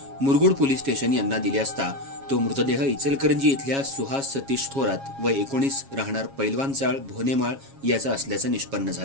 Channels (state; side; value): late; left; 7.3 ms